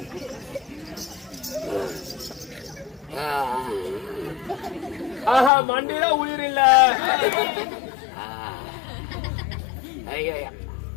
ஆஹா, மண்டியில உயிர் இல்ல.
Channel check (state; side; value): drops out; right; at 5.5 s